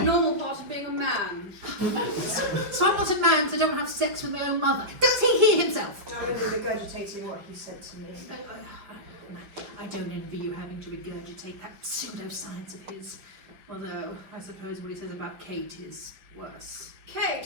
normal part of being a man. So I'm not a man, so I don't have sex with my own mother. Does he hear himself? I'm only regurgitating what he said to me. I don't envy you having to regurgitate that pseudoscience of his. Although, I suppose what he says about Kate is worse.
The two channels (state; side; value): late; left; 5.1 ms